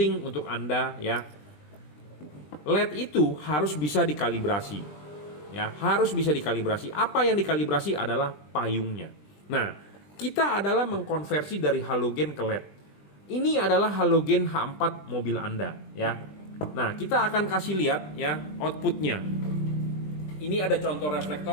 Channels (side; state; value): right; late; 20 ms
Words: untuk Anda ya, LED itu harus bisa dikalibrasi ya, harus bisa dikalibrasi. Apa yang dikalibrasi adalah payungnya. Nah, kita adalah mengkonversi dari halogen ke LED. Ini adalah halogen H4 mobil Anda ya. Nah, kita akan kasih lihat ya outputnya. Ini ada contoh